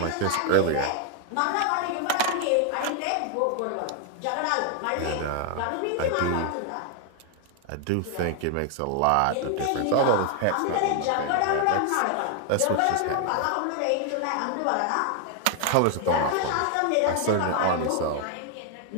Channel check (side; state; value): both; different; correlation 0.00